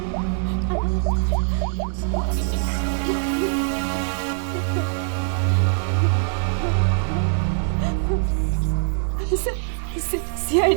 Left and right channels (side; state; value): left; silent; 58 dB below the other